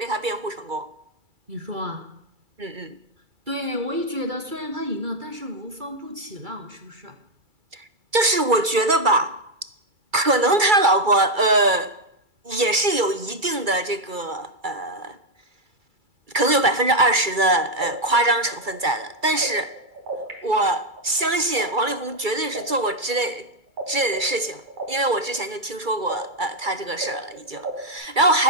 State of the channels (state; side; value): late; left; 2.3 ms